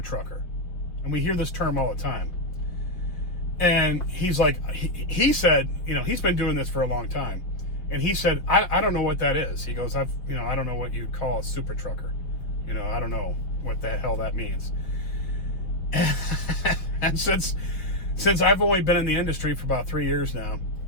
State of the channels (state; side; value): late; right; 5.4 ms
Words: And we hear this term all the time. And he's like, he said, he's been doing this for a long time. And he said, I don't know what that is. He goes, I don't know what you'd call a super trucker. I don't know what the hell that means. And since I've only been in the industry for about 3 years now,